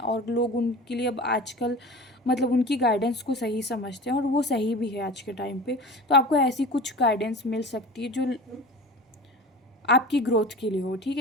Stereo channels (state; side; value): normal; both; correlation 0.36